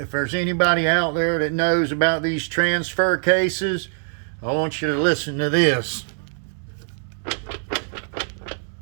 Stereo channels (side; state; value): left; silent; digital silence